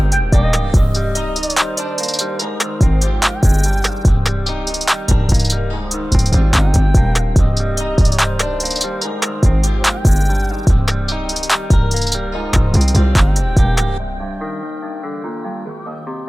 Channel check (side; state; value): both; normal; correlation 0.97